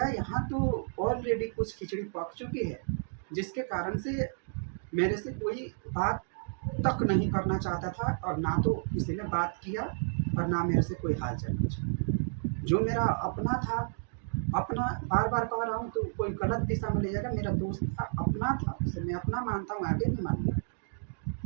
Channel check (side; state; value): left; silent; digital silence